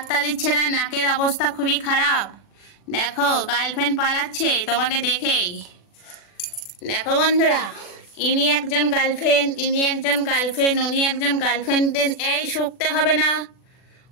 দিচ্ছে না, নাকের অবস্থা খুবই খারাপ। দেখো গার্লফ্রেন্ড পালাচ্ছে তোমাকে দেখেই। দেখো বন্ধুরা, ইনি একজন গার্লফ্রেন্ড, ইনি একজন গার্লফ্রেন্ড, উনি একজন গার্লফ্রেন্ড। এই শুকতে হবে না,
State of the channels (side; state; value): right; late; 40 ms